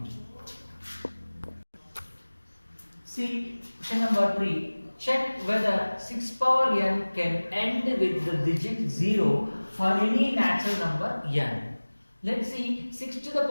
See question number 3. Check whether 6 power n can end with the digit 0 for any natural number n. Let's see 6 to the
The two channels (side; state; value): both; inverted; correlation -1.00